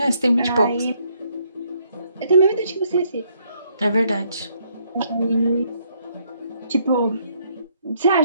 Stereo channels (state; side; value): inverted; both; correlation -0.70